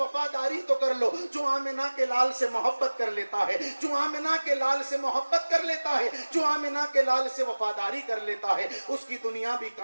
तो कर लो। जो आमिना के लाल से मोहब्बत कर लेता है, जो आमिना के लाल से मोहब्बत कर लेता है, जो आमिना के लाल से वफादारी कर लेता है, उसकी दुनिया भी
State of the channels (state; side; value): inverted; both; correlation -1.00